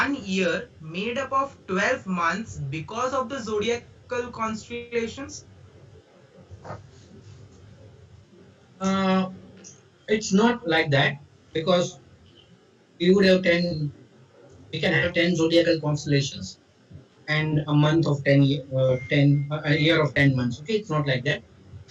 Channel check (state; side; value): identical; both; correlation 1.00